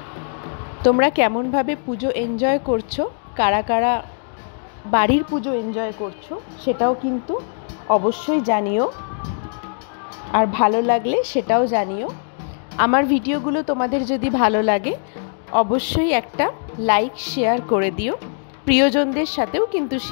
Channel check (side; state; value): right; silent; 65 dB below the other